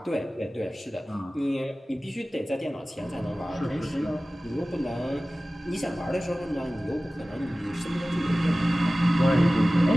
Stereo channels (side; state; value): both; normal; correlation 0.97